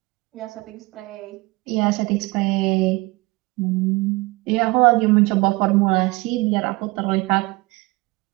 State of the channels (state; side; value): quieter; left; 23.4 dB